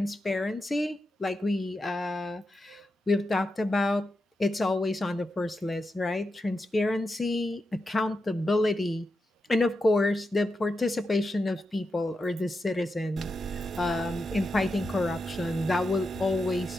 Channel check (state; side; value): normal; both; correlation 0.88